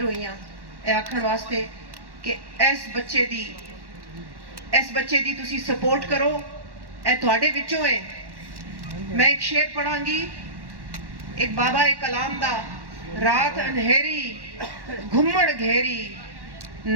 ਹੋਈ ਹਾਂ ਇਹ ਆਖਣ ਵਾਸਤੇ ਕਿ ਇਸ ਬੱਚੇ ਦੀ ਤੁਸੀਂ ਸਪੋਰਟ ਕਰੋ ਇਹ ਤੁਹਾਡੇ ਵਿੱਚੋਂ ਹੈ मैं एक शेर पढ़ांगी एक बाबा एक कलाम दा रात अंधेरी घुम्मड़ घेरी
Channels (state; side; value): late; left; 1.1 ms